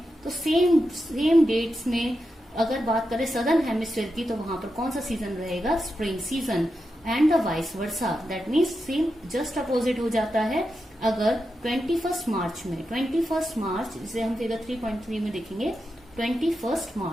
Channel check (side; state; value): both; normal; correlation 0.88